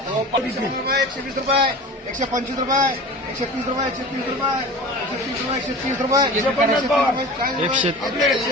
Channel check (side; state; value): both; normal; correlation 0.36